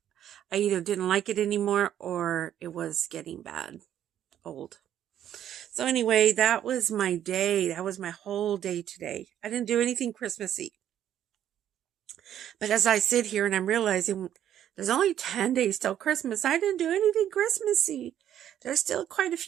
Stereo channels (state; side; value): quieter; left; 10.7 dB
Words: I either didn't like it anymore or it was getting bad, old. So anyway, that was my day. That was my whole day today. I didn't do anything Christmassy. But as I sit here and I'm realizing there's only 10 days till Christmas, I didn't do anything Christmassy. There's still quite a